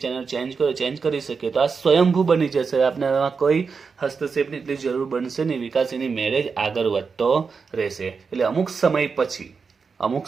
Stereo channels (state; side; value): quieter; left; 5.2 dB